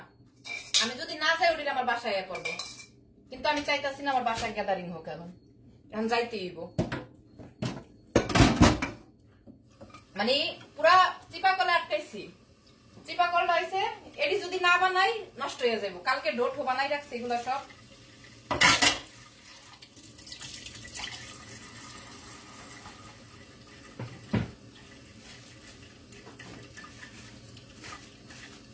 আমি যদি না যাই ওটা আমার বাসায় করবো, কিন্তু আমি চাইতেছি না আমার বাসায় গ্যাদারিং হোক। এখন যাইতে হইব, মানে পুরা চিপা কলে আটকাইছি। চিপা কলটা হয়েছে, এটি যদি না বানাই নষ্ট হয়ে যাবো। কালকে ডোঠো বানাই রাখছি, এগুলো সব।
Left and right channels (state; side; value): identical; both; correlation 1.00